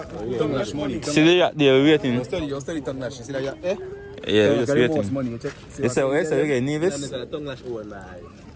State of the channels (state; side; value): identical; both; correlation 1.00